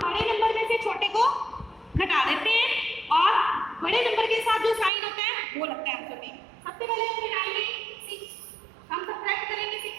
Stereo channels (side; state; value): left; drops out; at 4.9 s